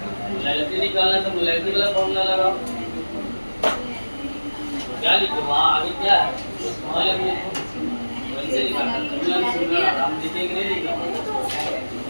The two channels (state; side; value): inverted; both; correlation -1.00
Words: मोलैरिटी निकालना है तो मोलैरिटी वाला फॉर्मूला लगाओ। क्या लिखे वहाँ आगे क्या है? वहाँ वैसे निकालना हम लिखेंगे नहीं लिखा